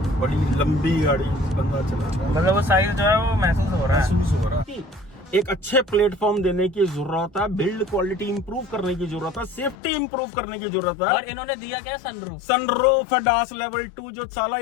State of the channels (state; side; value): drops out; right; at 9.8 s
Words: बड़ी लंबी गाड़ी बंदा चला रहा है। मतलब वो साइज जो है वो महसूस हो रहा है। एक अच्छे प्लेटफॉर्म देने की जरूरत है, बिल्ड क्वालिटी इंप्रूव करने की जरूरत है, सेफ्टी इंप्रूव करने की जरूरत है। और इन्होंने दिया क्या? सनरूफ ADAS लेवल 2 जो साला